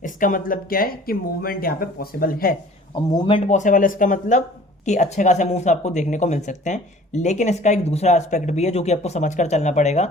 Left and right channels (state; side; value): normal; both; correlation 0.49